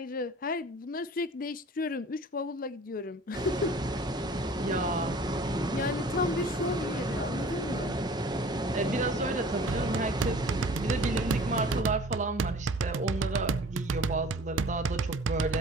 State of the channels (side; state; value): both; normal; correlation 0.46